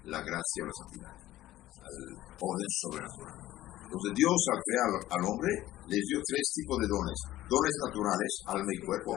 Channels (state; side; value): quieter; right; 14.9 dB